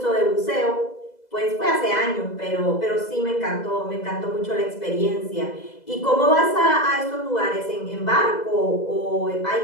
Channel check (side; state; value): right; late; 2.0 ms